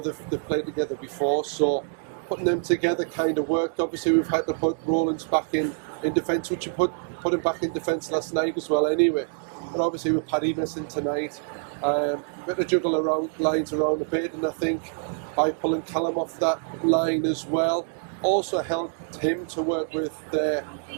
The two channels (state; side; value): silent; left; 61 dB below the other